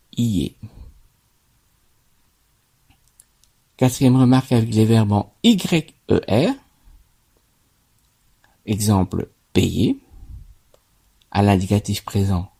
Quatrième remarque avec les verbes en YER. Exemple, payer. À l'indicatif présent,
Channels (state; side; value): identical; both; correlation 1.00